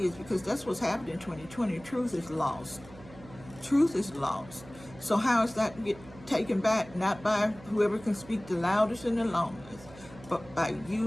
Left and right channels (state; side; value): noise; right; hum, 19 dB below the sound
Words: because that's what's happening in 2020. Truth is lost. Truth is lost. So how is that get taken back? Not by whoever can speak the loudest and the longest, but by